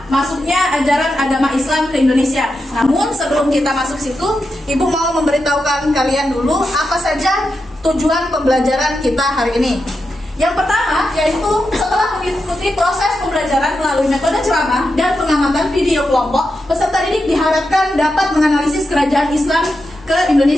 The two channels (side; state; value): both; normal; correlation 0.88